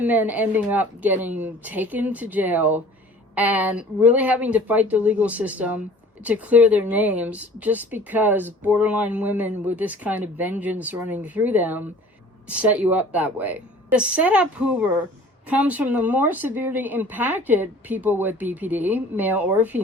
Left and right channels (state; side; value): normal; both; correlation 0.47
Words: men ending up getting taken to jail and really having to fight the legal system to clear their names, just because borderline women with this kind of vengeance running through them set you up that way. The setup Hoover comes from the more severely impacted people with BPD, male or